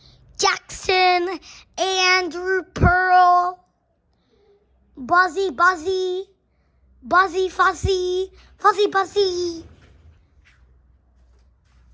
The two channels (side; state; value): both; identical; correlation 1.00